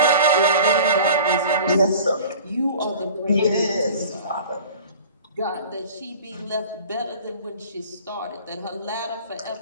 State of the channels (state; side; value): inverted; both; correlation -0.43